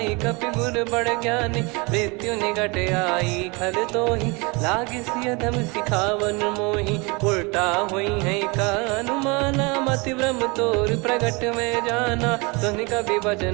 कपि गुर बड़ ज्ञानी। मृत्यु निकट आई खल तोहि लागे सियधम सिखावन मोहि। उल्टा हुई है का अनुमाना मति ब्रह्म तोर प्रगट में जाना। सुन कवि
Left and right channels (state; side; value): quieter; left; 28.1 dB